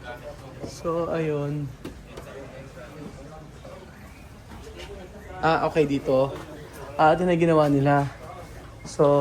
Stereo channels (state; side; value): identical; both; correlation 1.00